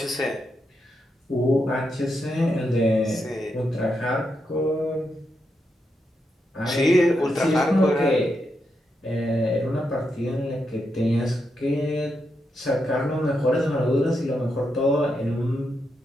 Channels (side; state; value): both; normal; correlation 0.84